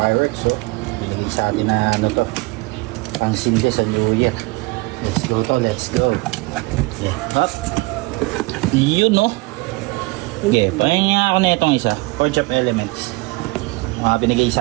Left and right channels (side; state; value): left; quieter; 24.9 dB